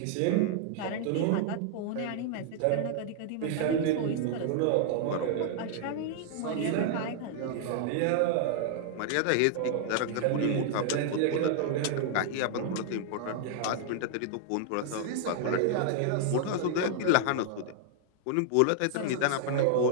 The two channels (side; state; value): both; different; correlation -0.01